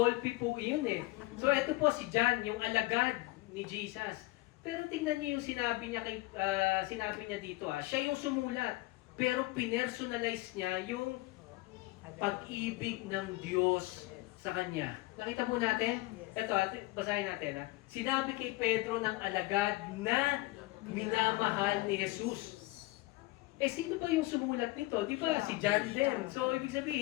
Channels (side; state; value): right; quieter; 21.1 dB